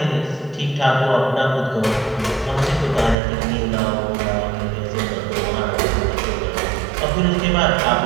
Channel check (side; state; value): left; drops out; at 3.2 s